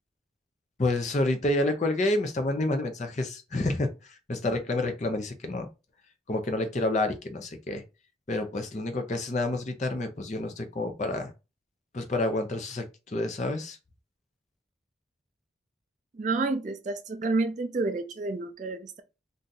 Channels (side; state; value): both; normal; correlation 0.59